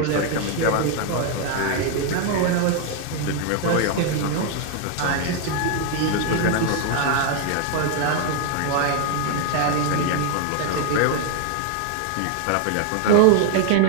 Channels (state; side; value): different; both; correlation 0.00